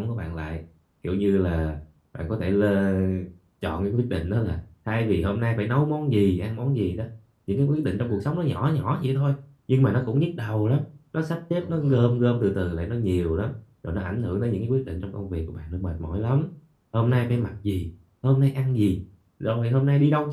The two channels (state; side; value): identical; both; correlation 1.00